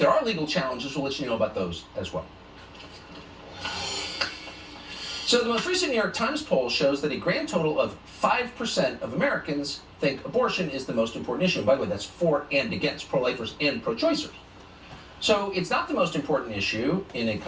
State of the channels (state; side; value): identical; both; correlation 1.00